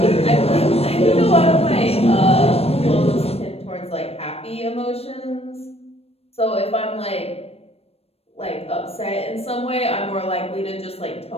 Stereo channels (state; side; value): late; right; 0.29 ms